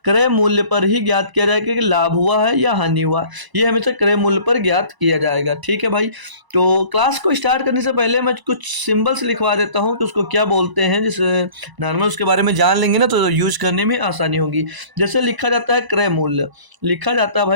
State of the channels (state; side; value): late; left; 1.0 ms